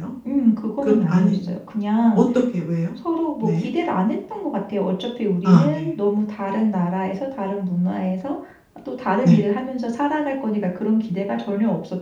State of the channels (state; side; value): identical; both; correlation 1.00